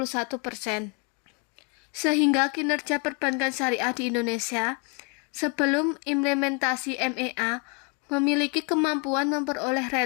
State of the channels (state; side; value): quieter; right; 33.7 dB